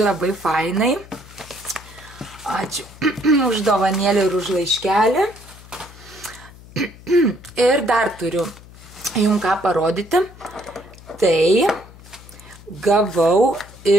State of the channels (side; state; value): left; noise; hum, 20 dB below the sound